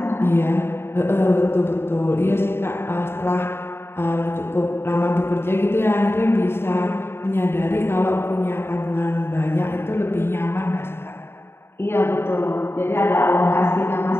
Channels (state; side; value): late; right; 0.11 ms